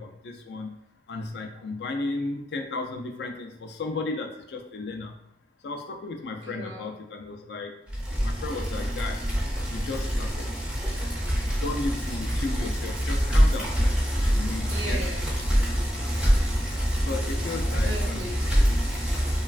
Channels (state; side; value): normal; both; correlation 0.88